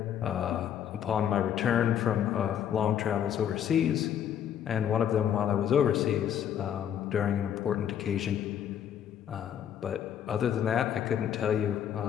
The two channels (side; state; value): right; quieter; 9.5 dB